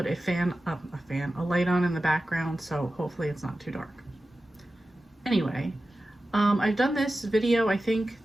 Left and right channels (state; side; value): normal; both; correlation 0.94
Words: a light on in the background, so hopefully it's not too dark. Anyway, I've done this video, I think